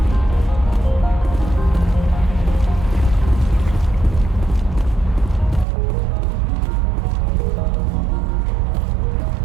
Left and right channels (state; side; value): drops out; left; at 5.7 s